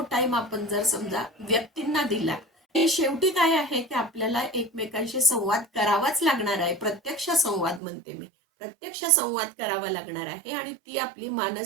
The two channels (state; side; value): drops out; left; at 7.8 s